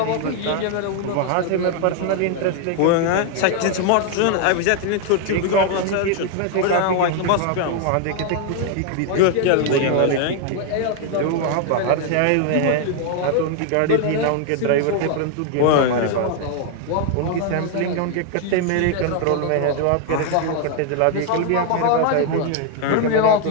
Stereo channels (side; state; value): both; different; correlation 0.00